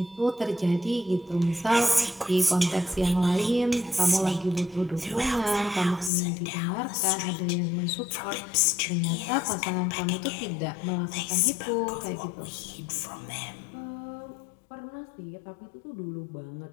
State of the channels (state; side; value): drops out; right; at 6.1 s